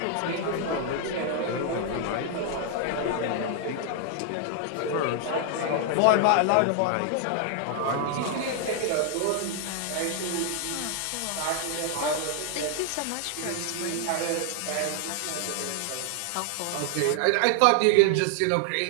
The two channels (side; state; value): both; different; correlation 0.00